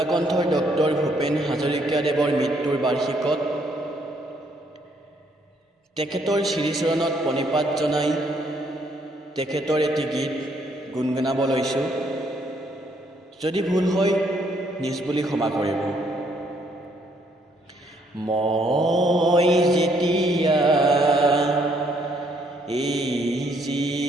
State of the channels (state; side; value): normal; both; correlation 0.69